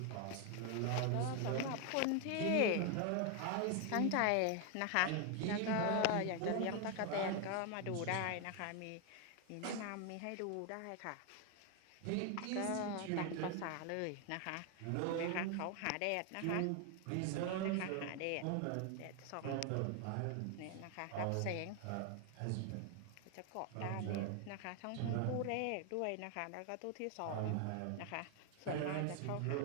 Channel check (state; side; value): different; both; correlation 0.01